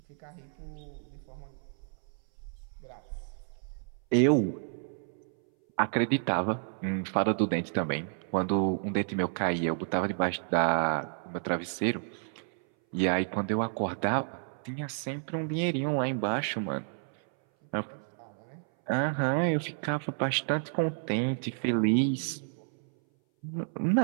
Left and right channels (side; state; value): left; silent; 57 dB below the other